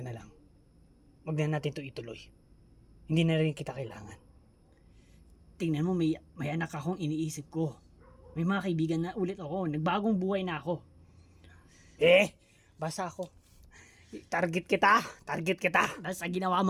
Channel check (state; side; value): identical; both; correlation 1.00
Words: na lang. Huwag na natin ito ituloy. Hindi na rin kita kailangan. Tingnan mo, may anak akong iniisip ko. May mga kaibigan na ulit ako. Nagbagong buhay na ako. Basta ako. Target kita. Dahil sa ginawa